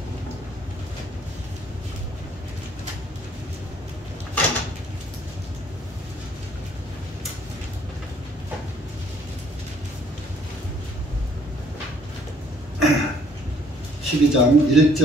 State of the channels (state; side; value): normal; both; correlation 0.62